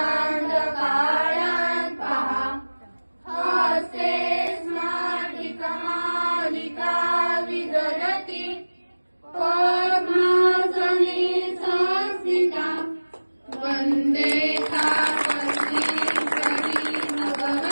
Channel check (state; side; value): inverted; both; correlation -1.00